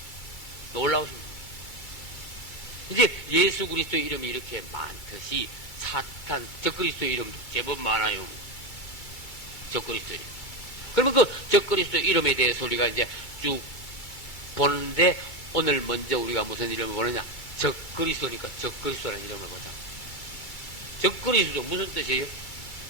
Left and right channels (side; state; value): right; late; 2.3 ms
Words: 놀라우신 분. 이제 예수 그리스도의 이름이 이렇게 많듯이 사탄, 적그리스도의 이름도 제법 많아요. 적그리스도의 이름. 그러면 그 적그리스도의 이름에 대해서 우리가 이제 쭉 보는데 오늘 먼저 우리가 무슨 이름을 보느냐? 적그리스도니까 적그리스도라는 이름을 보자. 적그리스도 무슨 뜻이에요?